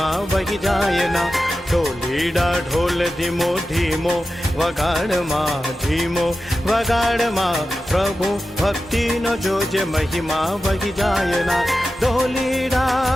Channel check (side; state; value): both; normal; correlation 0.93